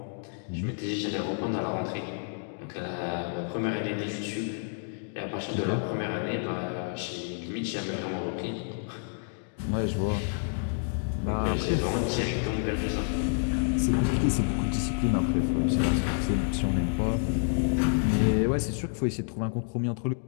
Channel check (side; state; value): right; silent; digital silence